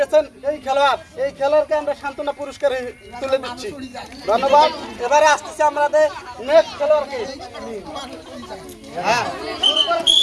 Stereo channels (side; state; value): both; identical; correlation 1.00